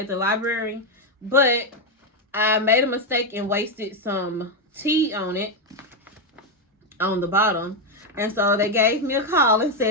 the library, but I made a mistake and wasted some tea on it on the bottom. And so they gave me a call and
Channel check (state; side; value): normal; both; correlation 0.04